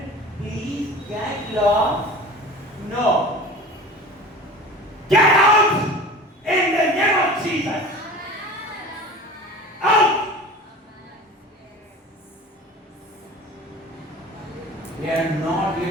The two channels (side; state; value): both; normal; correlation 0.38